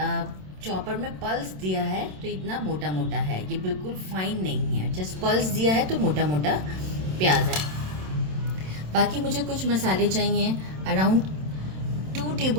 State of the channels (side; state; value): left; late; 27 ms